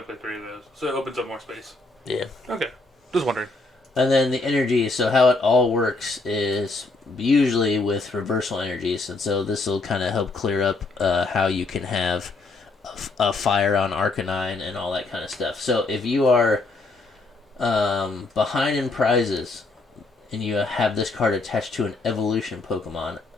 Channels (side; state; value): right; quieter; 3.4 dB